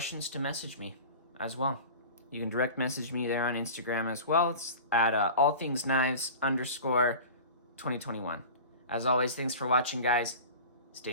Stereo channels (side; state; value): both; inverted; correlation -0.36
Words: to message me as well. You can direct message me there on Instagram as well. It's at allthingsknives_2021. As always, thanks for watching, guys.